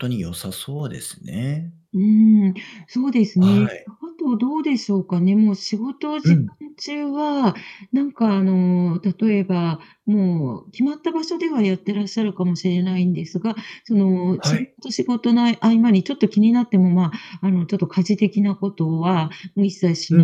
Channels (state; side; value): identical; both; correlation 1.00